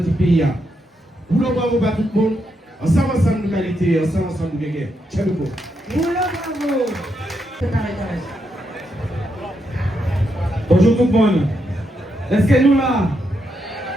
pays. Nous le bravo à tout le monde. Ensemble de qualité, ensemble de guerre. Ciao, Bonjour tout le monde. Est-ce que nous là?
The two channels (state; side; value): normal; both; correlation 0.81